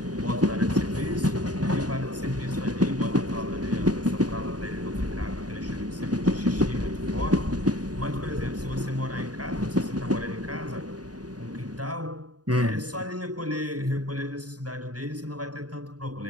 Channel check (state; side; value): late; left; 0.68 ms